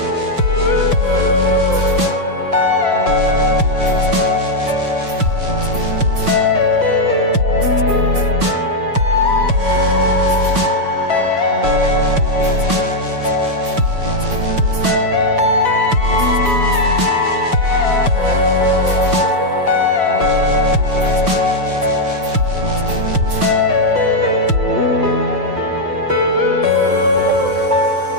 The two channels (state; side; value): late; left; 6.0 ms